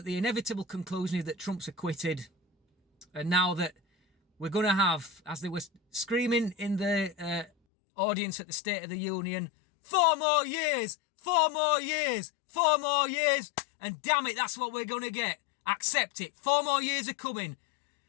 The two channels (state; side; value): drops out; right; at 7.5 s